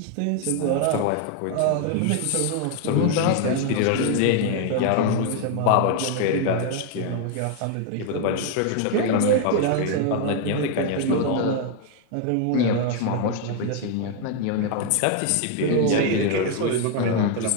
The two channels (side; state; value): both; different; correlation 0.01